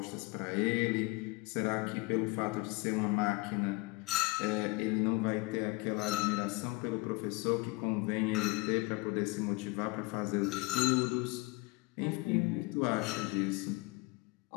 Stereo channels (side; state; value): right; quieter; 25.0 dB